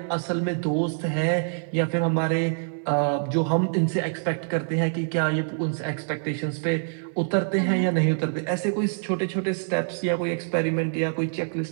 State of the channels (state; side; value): silent; left; digital silence